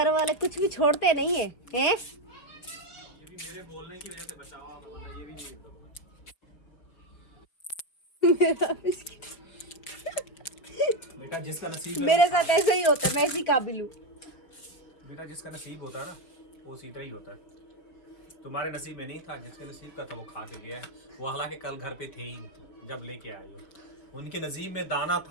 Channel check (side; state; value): right; late; 4.8 ms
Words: वाले कुछ भी छोड़ते नहीं है, हैं? मेरे बोलने की वजह से बचाओ आप, वरना ये भी नहीं करूंगा। बेटा जिसका नसीब है मेरे साथ ऐसे ही होता है, मैं इसी काबिल हूँ। बेटा जिसका नसीब होता है ना वो सीधा ही होता है। तुम्हारे नसीब में नहीं था, जिसके नसीब का था वो खा के गया है। वो हालांकि कल घर पे थे ही जब लेके आए हो, उनके नसीब में दाना